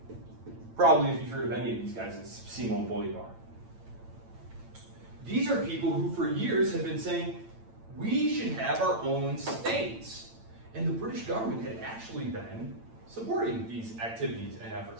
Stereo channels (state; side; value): late; left; 8.9 ms